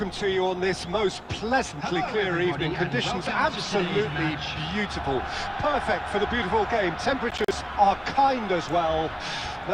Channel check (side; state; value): both; identical; correlation 1.00